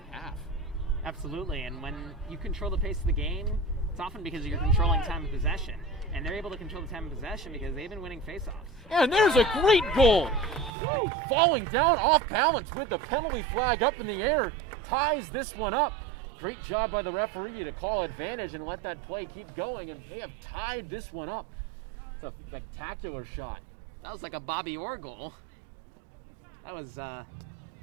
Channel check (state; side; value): drops out; left; at 10.7 s